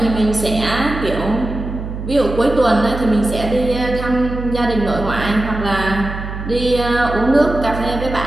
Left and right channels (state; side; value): noise; right; hum, 7 dB below the sound